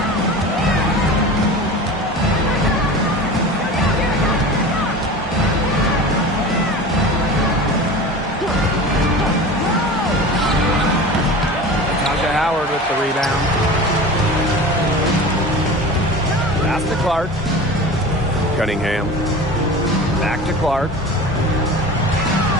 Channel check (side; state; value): both; normal; correlation 0.34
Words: Howard with the rebound. Pass to Clark. Cunningham. Back to Clark.